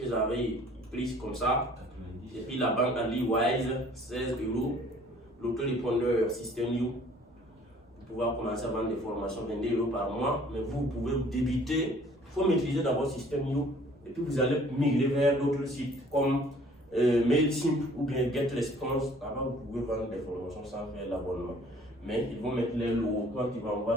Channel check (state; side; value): normal; both; correlation 0.55